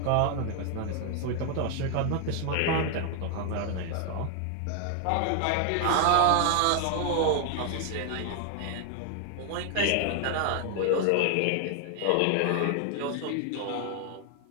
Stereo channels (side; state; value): both; different; correlation 0.00